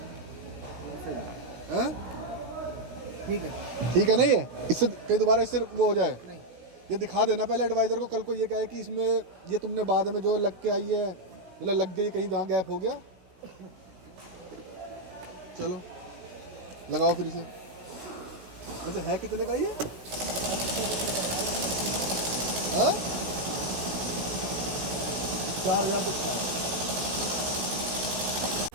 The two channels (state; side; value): late; left; 16 ms